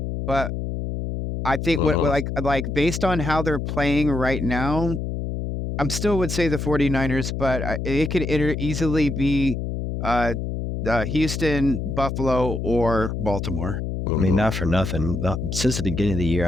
but I think like based on how they're playing right now, I'm still would say the 49ers, but it could easily be Houston, Buffalo, or Baltimore. I mean, not for nothing. Since the beginning of the year,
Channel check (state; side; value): noise; left; hum, 4 dB below the sound